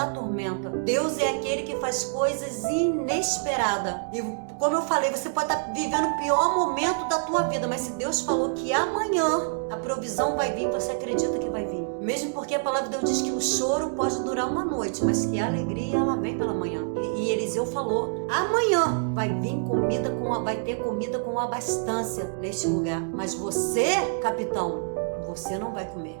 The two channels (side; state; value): left; silent; digital silence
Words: tormenta. Deus é aquele que faz coisas inesperadas. E como eu falei, você pode estar vivendo o pior momento da tua vida, mas se Deus falou que amanhã a provisão vai vir, você acredita que vai vir. Mesmo porque a palavra de Deus diz que o choro pode durar uma noite, mas que a alegria ela vem pela manhã. E Eliseu falou: amanhã vai vir comida vai ter comida com abastância neste lugar. Mas você, capitão, você não vai